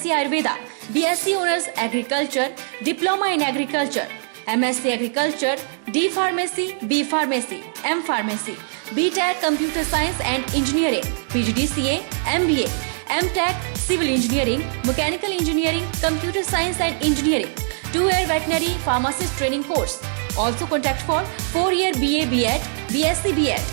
Ayurveda, BSc Honors Agriculture, Diploma in Agriculture, MSc Agriculture, D Pharmacy, B Pharmacy, M Pharmacy, BTech Computer Science and Engineering, PGDCA, MBA, MTech Civil Engineering, Mechanical Engineering, Computer Science and Engineering, 2-year Veterinary Pharmacist Training Course. Also contact for 4-year BA BEd, BSc BEd,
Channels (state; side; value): silent; left; digital silence